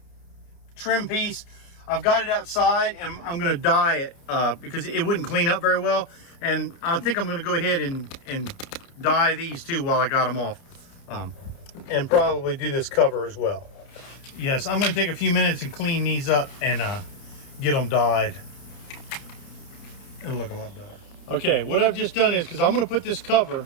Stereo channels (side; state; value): right; late; 30 ms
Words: trim piece, I've got it outside, and I'm going to dye it because it wouldn't clean up very well, and I think I'm going to go ahead and dye these too while I got them off, and probably do this cover as well. Yes, I'm going to take a few minutes and clean these up and get them dyed. It'll look a lot better. Okay, what I've just done is, because I'm going to put this cover